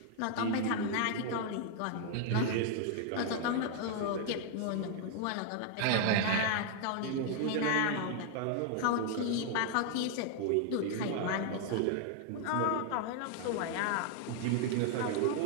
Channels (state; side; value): different; both; correlation 0.00